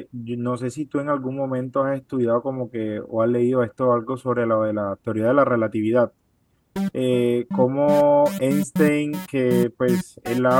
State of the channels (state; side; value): identical; both; correlation 1.00